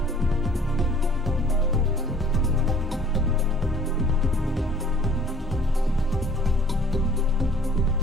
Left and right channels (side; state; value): both; normal; correlation 0.54